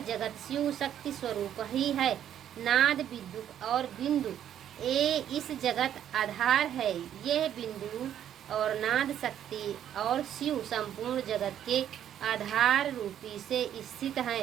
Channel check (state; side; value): quieter; left; 10.3 dB